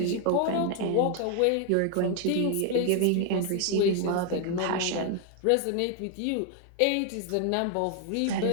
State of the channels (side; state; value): both; different; correlation 0.00